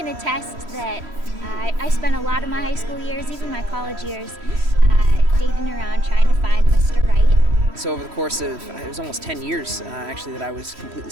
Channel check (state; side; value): late; left; 3.1 ms